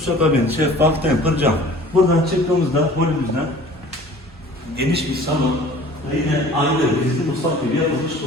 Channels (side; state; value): both; normal; correlation 0.47